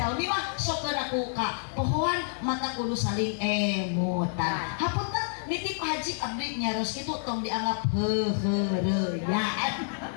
mah sok aku ka pohon mata kudu saling emutan. Hapunten nitip Haji abdi nyaros kitu tong dianggap heureuyaan.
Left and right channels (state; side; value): silent; right; digital silence